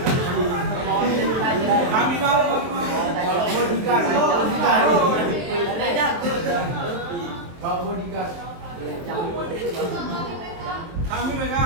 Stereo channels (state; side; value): late; left; 23 ms